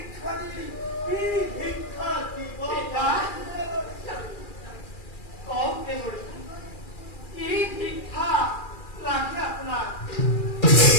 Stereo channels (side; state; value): right; late; 2.4 ms